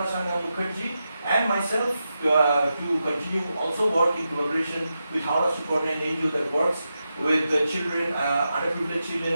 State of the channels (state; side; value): inverted; both; correlation -0.88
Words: Sangha Mukherjee and myself to continue also work in collaboration with Howrah Suparna, an NGO that works with the children, underprivileged children